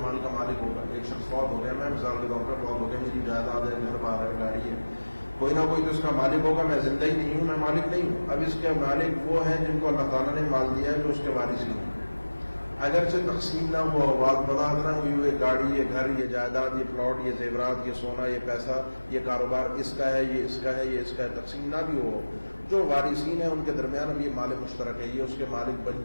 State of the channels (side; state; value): both; inverted; correlation -1.00